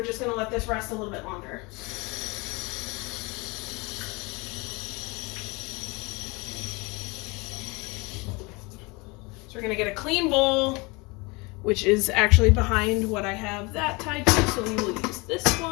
just gonna let this rest a little bit longer. So we're gonna get a clean bowl, which is actually behind what I have that tied to, so we will use this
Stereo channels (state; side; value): quieter; right; 26.7 dB